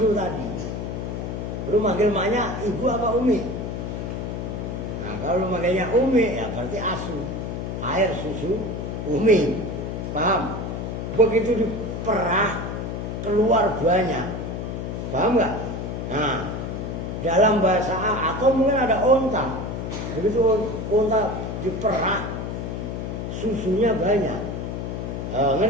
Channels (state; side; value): noise; left; hum, 4 dB below the sound